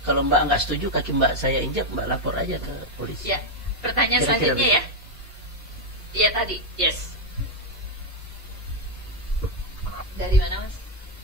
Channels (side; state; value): both; normal; correlation 0.01